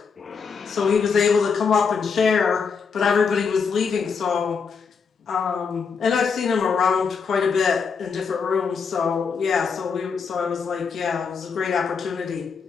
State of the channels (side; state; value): right; quieter; 5.7 dB